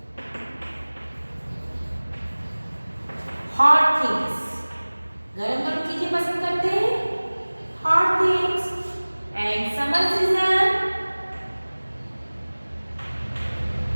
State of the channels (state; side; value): inverted; both; correlation -1.00